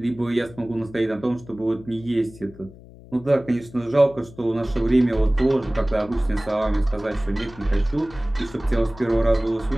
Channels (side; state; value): left; noise; hum, 20 dB below the sound